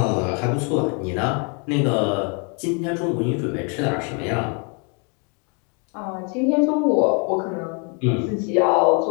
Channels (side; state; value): right; quieter; 36.1 dB